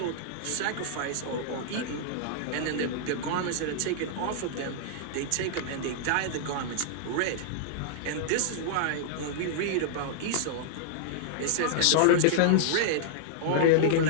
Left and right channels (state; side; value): different; both; correlation -0.01